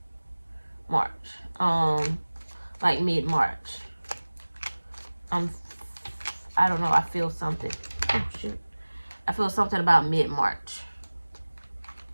Like mid-March. I don't know, I feel something. Oh shoot. I feel something about mid-March.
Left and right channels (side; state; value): both; inverted; correlation -1.00